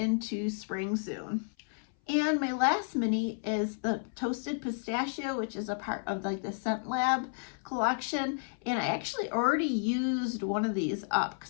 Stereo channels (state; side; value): silent; right; 57 dB below the other